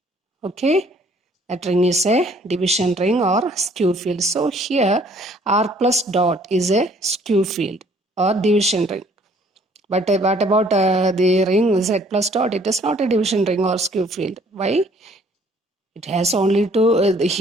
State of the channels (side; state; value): both; normal; correlation 0.59